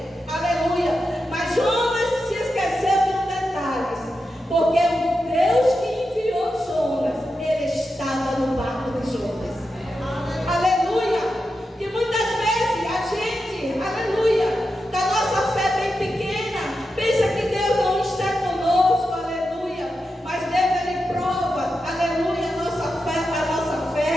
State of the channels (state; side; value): normal; both; correlation 0.89